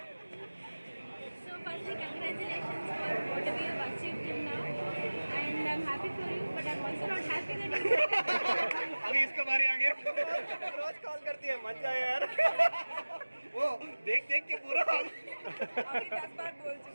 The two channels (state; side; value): inverted; both; correlation -1.00